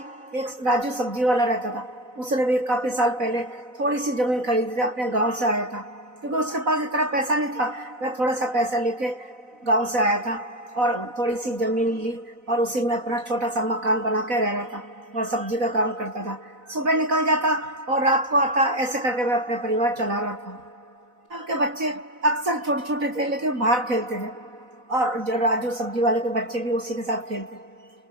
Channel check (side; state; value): left; late; 4.0 ms